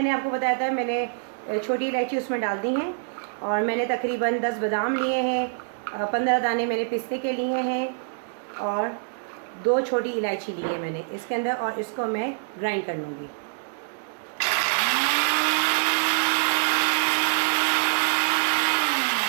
आपको बताया था, मैंने छोटी इलायची उसमें डाल दी हैं और मैंने तकरीबन 10 बादाम लिए हैं, 15 दाने मैंने पिस्ते के लिए हैं और 2 छोटी इलायची ली है मैंने इसके अंदर, और इसको मैं ग्राइंड कर लूँगी।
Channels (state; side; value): silent; left; digital silence